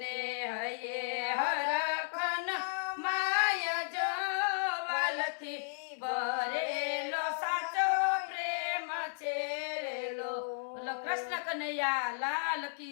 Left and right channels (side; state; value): right; silent; digital silence